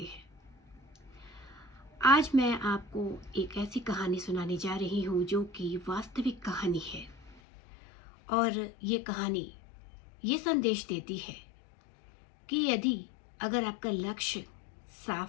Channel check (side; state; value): right; drops out; at 7.4 s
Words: आज मैं आपको एक ऐसी कहानी सुनाने जा रही हूँ जो कि वास्तविक कहानी है, और ये कहानी ये संदेश देती है कि यदि अगर आपका लक्ष्य